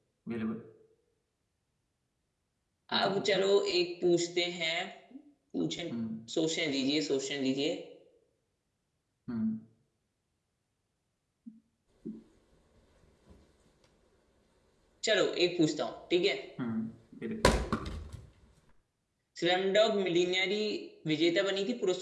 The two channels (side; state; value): both; identical; correlation 1.00